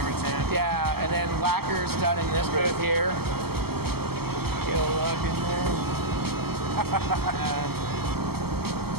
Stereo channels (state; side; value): late; left; 0.96 ms